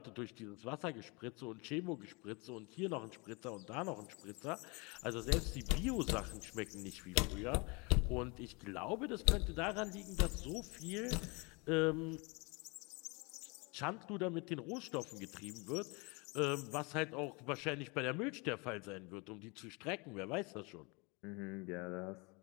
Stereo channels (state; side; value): quieter; right; 29.1 dB